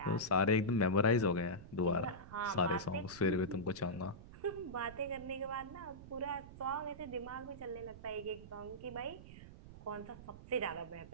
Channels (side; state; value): right; noise; rumble, 15 dB below the sound